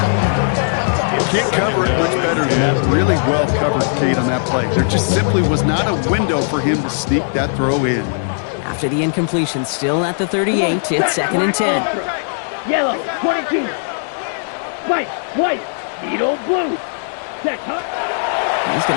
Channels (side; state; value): right; silent; digital silence